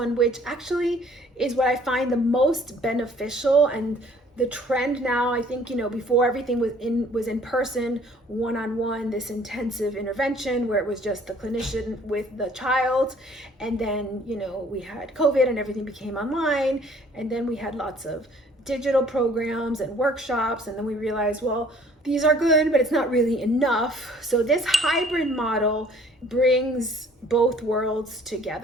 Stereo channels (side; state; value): both; normal; correlation 0.56